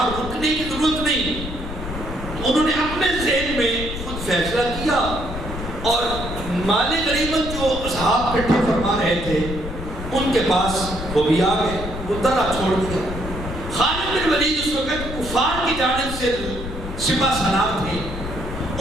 رکنے کی ضرورت نہیں۔ انہوں نے اپنے ذہن میں خود فیصلہ کیا اور مال غنیمت جو اصحاب اکٹھا فرما رہے تھے ان کے پاس وہ بھی آ گئے، وہ درہ چھوڑ دیا۔ خالد بن ولید اس وقت کفار کی جانب سے سپہ سالار تھے،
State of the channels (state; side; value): noise; left; rumble, 8 dB below the sound